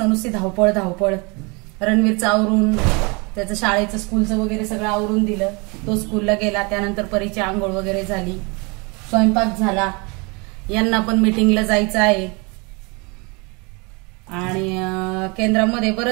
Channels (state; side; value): quieter; left; 29.5 dB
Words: नुसती धावपळ धावपळ। रणवीरचं आवरून त्याचं शाळेचं स्कूलचं वगैरे सगळं आवरून दिलं, तो स्कूलला गेला। त्यानंतर परीची आंघोळ वगैरे झाली, स्वयंपाक झाला, यांना पण मीटिंगला जायचं आहे। आणि केंद्रामध्ये